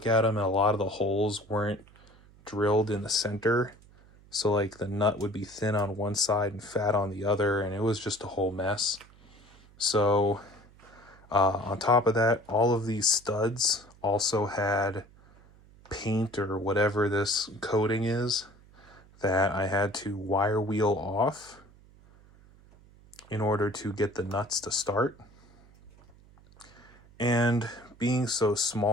at them and a lot of the holes weren't drilled in the center. So like the nut would be thin on one side and fat on the other, and it was just a whole mess. So on top of that, all of these studs also had paint or whatever this coating is that I had to wire wheel off in order to get the nuts to start. And being so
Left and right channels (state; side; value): noise; right; hum, 26 dB below the sound